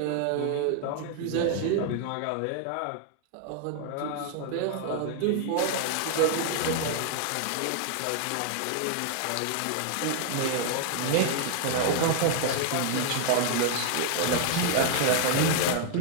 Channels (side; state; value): both; different; correlation 0.00